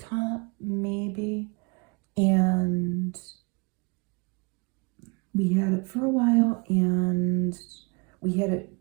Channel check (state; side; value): quieter; left; 30.7 dB